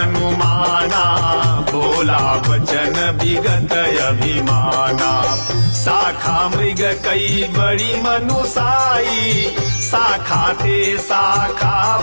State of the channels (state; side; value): inverted; both; correlation -1.00